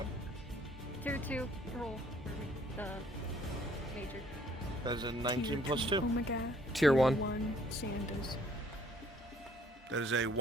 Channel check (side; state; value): both; normal; correlation 0.59